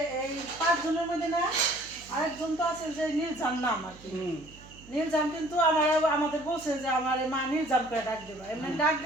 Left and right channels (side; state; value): right; noise; hum, 21 dB below the sound